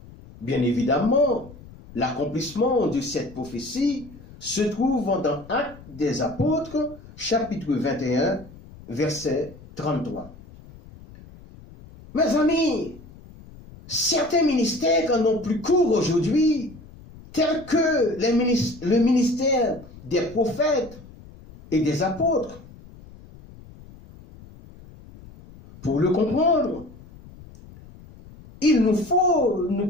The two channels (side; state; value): left; noise; rumble, 20 dB below the sound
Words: Bien évidemment, l'accomplissement de cette prophétie se trouve dans Actes des Apôtres, chapitre 21, verset 33. Mes amis, certains ministères n'ont plus cours aujourd'hui, tels que le ministère des prophètes et des apôtres. Pour le comprendre, il nous faut